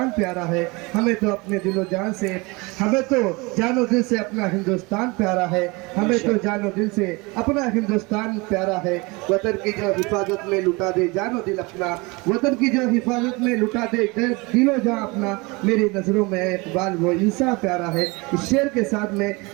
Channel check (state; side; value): quieter; left; 25.9 dB